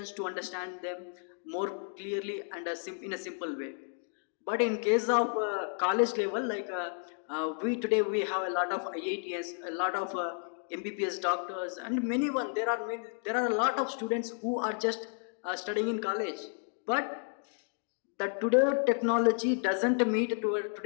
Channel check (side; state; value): right; silent; 56 dB below the other